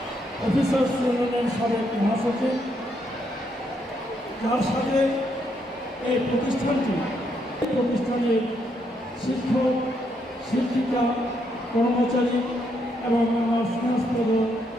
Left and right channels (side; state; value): both; normal; correlation 0.76